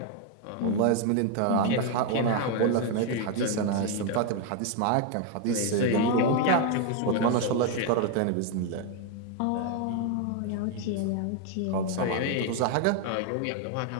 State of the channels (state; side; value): different; both; correlation 0.01